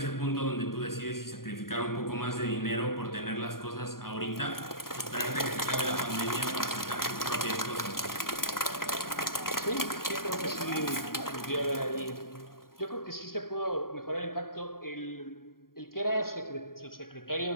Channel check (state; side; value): late; right; 0.92 ms